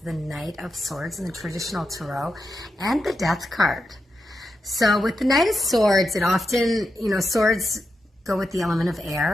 Knight of Swords in the traditional tarot, and the Death card. So with the Knight of Swords, it often, swords go with the element of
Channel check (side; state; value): both; normal; correlation 0.87